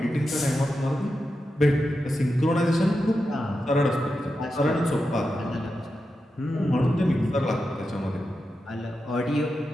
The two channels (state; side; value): normal; both; correlation 0.89